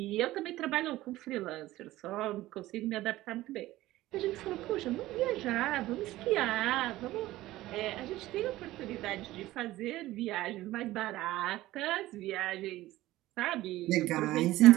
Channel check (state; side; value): quieter; left; 16.5 dB